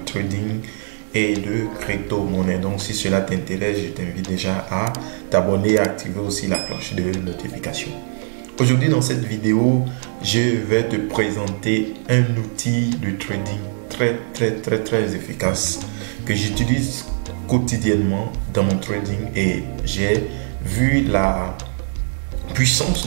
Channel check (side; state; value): left; silent; digital silence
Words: trading et de crypto-monnaie. Donc si cela t'intéresse, je t'invite déjà à t'abonner et à activer aussi la cloche de notification. Aujourd'hui dans cette vidéo, je vais te présenter un outil de trading très efficace que j'utilise quotidiennement dans mon trading et j'ai vu la